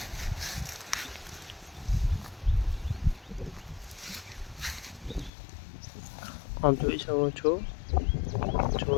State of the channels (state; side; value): drops out; right; at 5.3 s